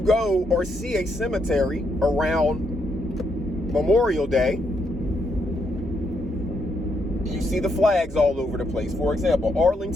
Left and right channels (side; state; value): both; normal; correlation 0.77